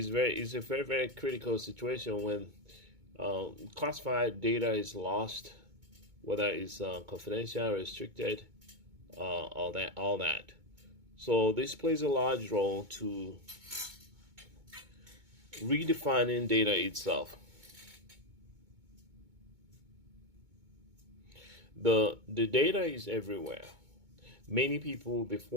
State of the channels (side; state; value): left; late; 2.2 ms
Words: a very, very critical situation when classified data is lost, whether it's confidential, restricted, all that. So this plays a large role to redefining data itself. The data is everywhere. Many people